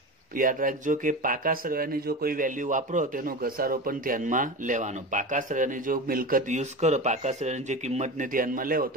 याद रखो कि पाका सरवानी जो कोई वेल्यू वापरो तेनो घसारो पण ध्यानमां लेवानो। पाका सरवानी जो मिलकत यूज करो, पाका सरवानी जे किंमत ने ध्यानमां लेवो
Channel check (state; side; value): normal; both; correlation 0.27